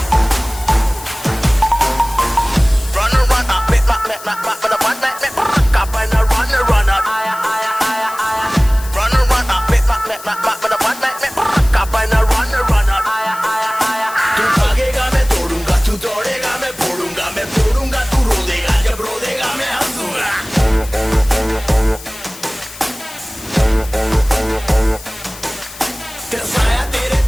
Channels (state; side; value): noise; left; hiss, 16 dB below the sound